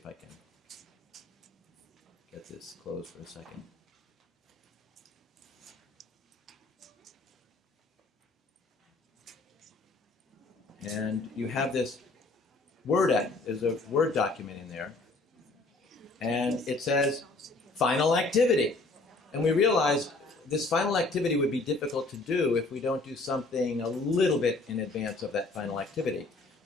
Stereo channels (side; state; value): right; quieter; 3.2 dB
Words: I can get this closed for a second. And you have this there's a Word document in there, and it says final activity. And we realize this final activity would be difficult to do if we don't do something a little bit in advance of that final activity.